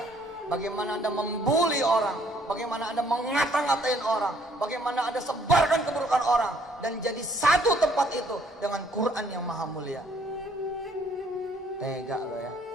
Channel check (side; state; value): both; normal; correlation 0.64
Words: Bagaimana Anda membuli orang. Bagaimana Anda mengata-ngatain orang. Bagaimana Anda sebarkan keburukan orang. Dan jadi satu tempat itu dengan Quran yang maha mulia. Tega lo ya.